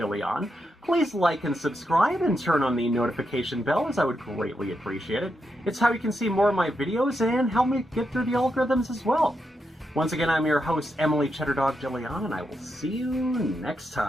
Please like and subscribe and turn on the notification bell, as I would greatly appreciate it. It's how you can see more of my videos and help me get through the algorithms as well. Once again, I'm your host, Emily Cheddardog DeLeon, and I will see you next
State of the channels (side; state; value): both; normal; correlation 0.84